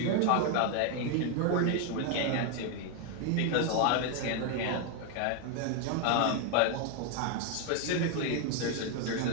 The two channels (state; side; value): different; both; correlation 0.00